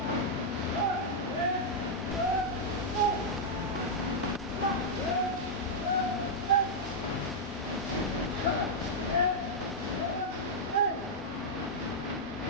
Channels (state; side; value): normal; both; correlation -0.05